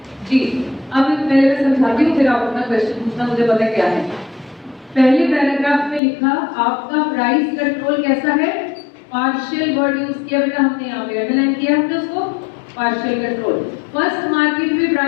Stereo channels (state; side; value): drops out; right; at 6.0 s